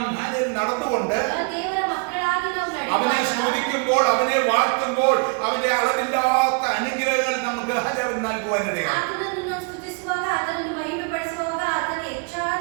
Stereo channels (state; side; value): quieter; left; 35.1 dB